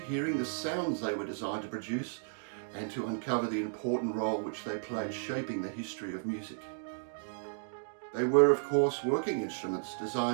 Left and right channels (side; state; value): left; silent; digital silence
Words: hearing the sounds they were designed to produce, and to uncover the important role which they played shaping the history of music. They were, of course, working instruments